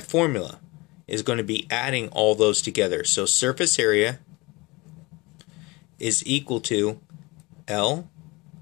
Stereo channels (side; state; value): right; quieter; 24.0 dB